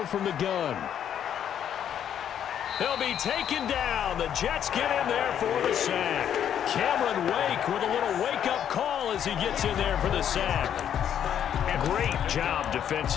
from the gun. He'll be taken down. The Jets get in there for the sack. Cameron Wake with a little wake-up call as he gets in there for the sack. A great job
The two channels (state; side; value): quieter; right; 9.5 dB